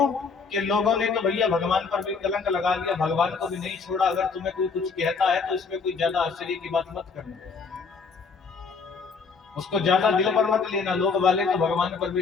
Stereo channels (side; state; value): right; quieter; 5.0 dB